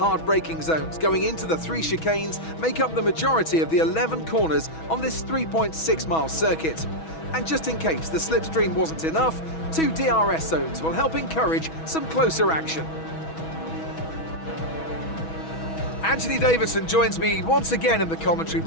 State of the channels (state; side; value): late; right; 6.2 ms